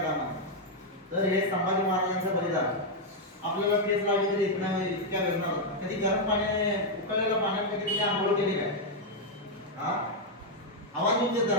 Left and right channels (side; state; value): both; normal; correlation -0.01